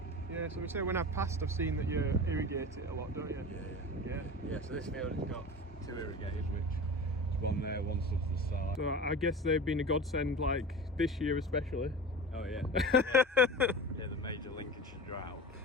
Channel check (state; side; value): normal; both; correlation 0.32